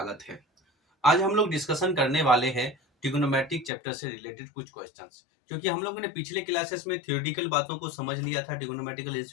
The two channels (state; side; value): drops out; right; at 3.7 s